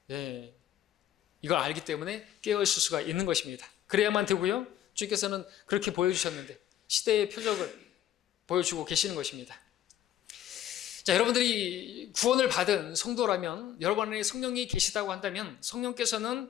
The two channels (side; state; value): right; quieter; 11.5 dB